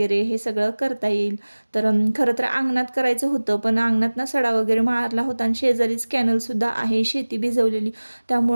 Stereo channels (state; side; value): inverted; both; correlation -1.00